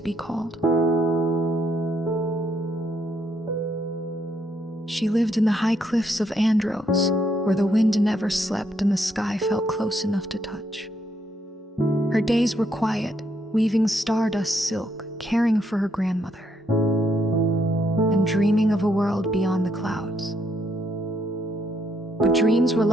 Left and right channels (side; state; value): both; normal; correlation 0.74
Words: be called. She lived in the high cliffs of Andros, where the wind never slept and the sky felt close enough to touch. Her days were quiet, weaving stardust silk, caring for her grandmother, and dreaming of a world beyond the clouds. But dreams were